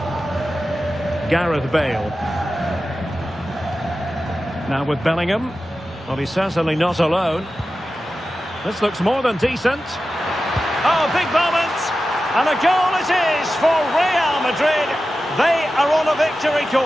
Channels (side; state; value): both; normal; correlation 0.93